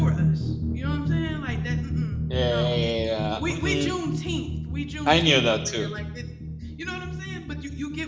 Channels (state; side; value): identical; both; correlation 1.00